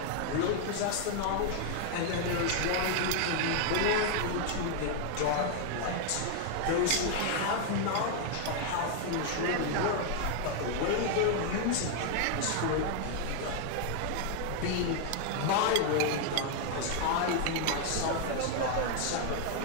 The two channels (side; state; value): both; different; correlation 0.00